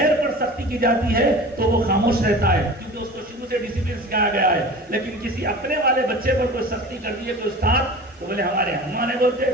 پر سختی کی جاتی ہے تو وہ خاموش رہتا ہے کیونکہ اس کو شروع سے ڈسپلن سکھایا گیا ہے. لیکن کسی اپنے والے بچے پر کوئی سختی کر دی ہے تو استاد تو بولے ہمارے ہم نہیں بولتے,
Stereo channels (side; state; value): both; normal; correlation 0.37